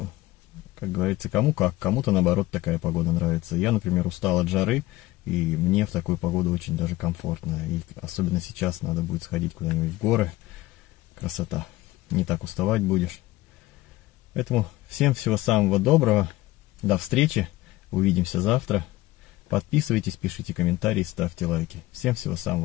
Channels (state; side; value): quieter; right; 18.1 dB